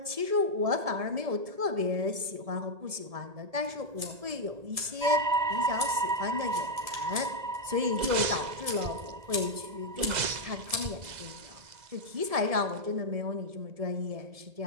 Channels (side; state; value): left; late; 1.7 ms